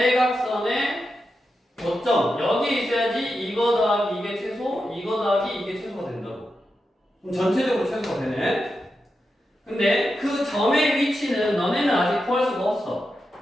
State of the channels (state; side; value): normal; both; correlation 0.88